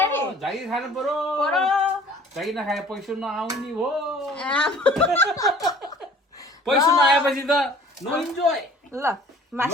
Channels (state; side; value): normal; both; correlation 0.50